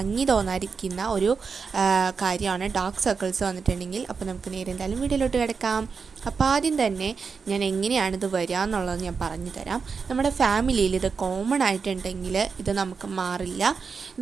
തോന്നാതിരിക്കുന്ന ഒരു കാര്യമാണ് ഡാർക്ക് സർക്കിൾസ് വന്നിട്ടുണ്ടെങ്കിൽ. അപ്പോൾ നമുക്ക് നേരെ എന്തായാലും വീഡിയോയിലോട്ട് കിടക്കാം. അപ്പോൾ ആദ്യം തന്നെ ഞാൻ എങ്ങനെയാണിത് വരിക എന്നുള്ളത് ഞാൻ പറഞ്ഞു തരാം. നമ്മുടെ ഫാമിലിയിൽ ഇത് കോമൺ ആയിട്ടുണ്ടെങ്കിൽ ഇത് നമുക്ക് മാറില്ല.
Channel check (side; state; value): left; quieter; 5.4 dB